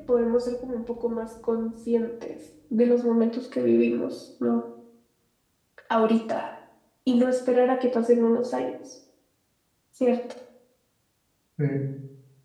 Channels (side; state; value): both; identical; correlation 1.00